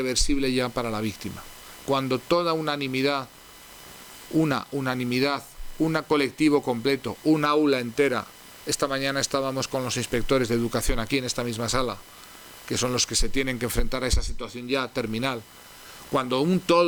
ya para la víctima, cuando toda unanimidad, un colectivo completo, un aula entera. Esta mañana estábamos con los inspectores de educación aquí en esta misma sala, que son los que se tienen que enfrentar a esa situación ya terminal. Cuando un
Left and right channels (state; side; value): identical; both; correlation 1.00